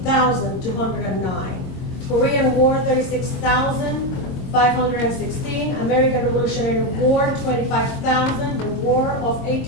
Korean War, 36,516. American Revolutionary War, 25,000. The War of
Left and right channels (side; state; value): right; late; 22 ms